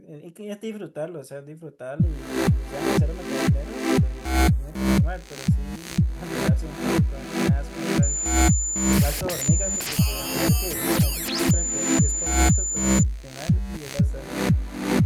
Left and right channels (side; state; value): both; identical; correlation 1.00